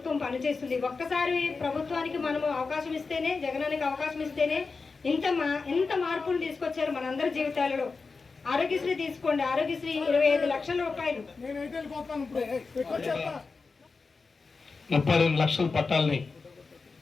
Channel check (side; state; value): right; quieter; 4.4 dB